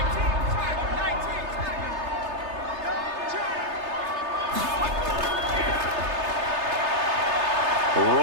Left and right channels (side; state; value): left; late; 3.3 ms